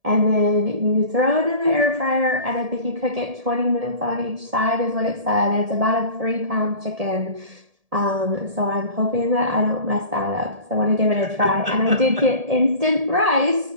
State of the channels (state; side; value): late; left; 1.7 ms